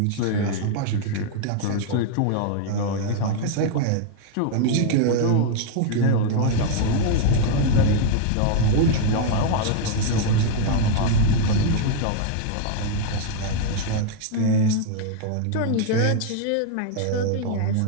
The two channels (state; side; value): different; both; correlation 0.00